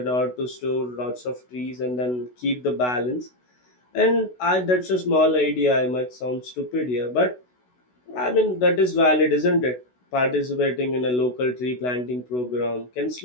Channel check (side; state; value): right; late; 16 ms